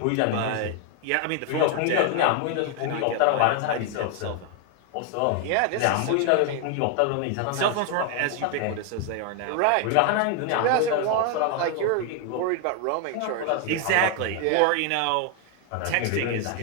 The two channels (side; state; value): both; different; correlation 0.00